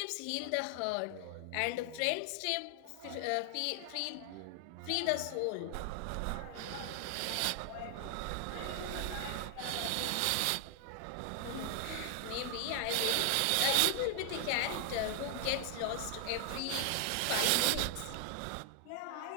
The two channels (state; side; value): different; both; correlation 0.00